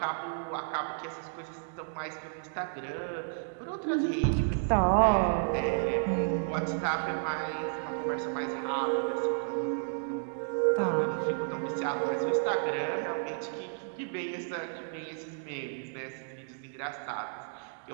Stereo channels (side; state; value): left; silent; digital silence